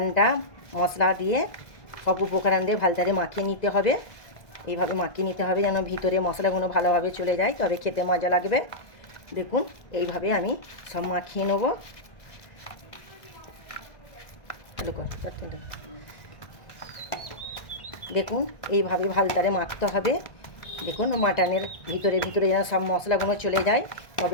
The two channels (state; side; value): late; right; 1.9 ms